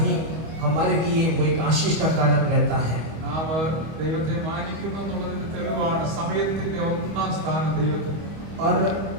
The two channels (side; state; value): left; late; 25 ms